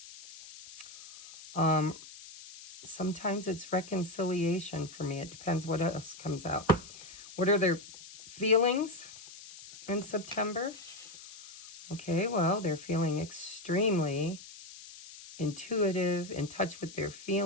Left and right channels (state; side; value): noise; left; hiss, 16 dB below the sound